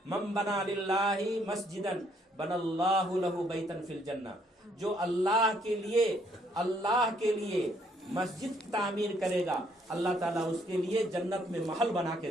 من بنا للہ مسجدا بن اللہ لہ بیتا فی الجنہ، جو اللہ کے لیے مسجد تعمیر کرے گا، اللہ تعالیٰ اس کے لیے جنت میں محل بنا کے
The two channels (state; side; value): normal; both; correlation 0.68